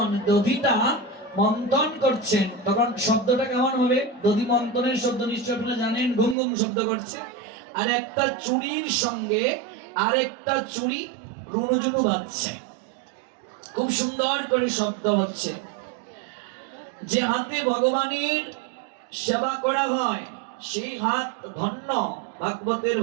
দধিটা মন্থন করছেন, তখন শব্দটা কেমন হবে? দধি মন্থনের শব্দ নিশ্চয় আপনারা জানেন, ঘুম ঘুম শব্দ করছে। আর একটা চুড়ির সঙ্গে আরেকটা চুড়ি রুনুঝুনু বাজছে, খুব সুন্দর করে শব্দ হচ্ছে। যে হাতে ভগবানের সেবা করা হয় সেই হাত ধন্য, ভাগবতের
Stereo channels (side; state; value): left; drops out; at 6.4 s